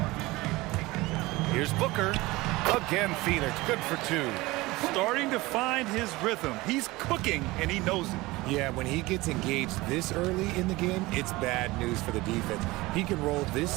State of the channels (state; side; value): quieter; left; 20.6 dB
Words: Here's Booker. Again, Phoenix. Good for 2. Starting to find his rhythm. He's cooking, and he knows it. Yeah, when he gets engaged this early in the game, it's bad news for the defense. He can roll this